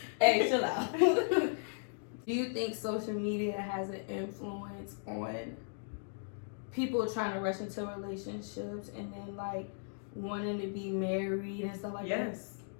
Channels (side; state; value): right; silent; digital silence